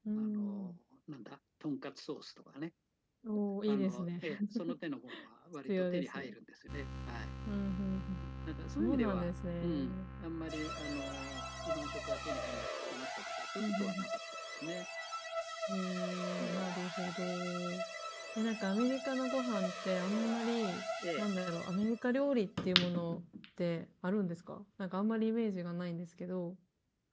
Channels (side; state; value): both; identical; correlation 1.00